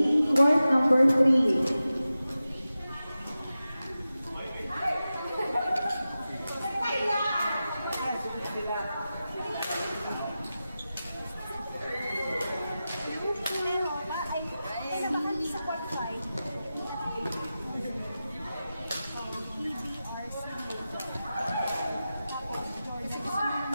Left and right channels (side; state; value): both; inverted; correlation -0.93